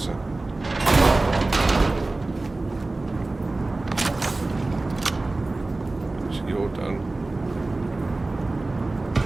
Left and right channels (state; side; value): quieter; left; 3.1 dB